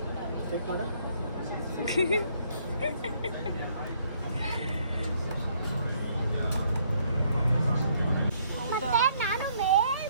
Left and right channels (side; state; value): both; inverted; correlation -0.67